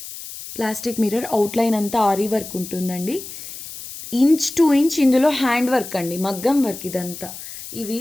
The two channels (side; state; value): left; noise; hiss, 12 dB below the sound